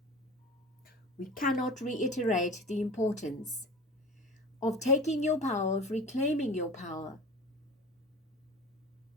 We cannot reiterate the importance of taking your power, of reclaiming your power,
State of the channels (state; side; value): normal; both; correlation 0.35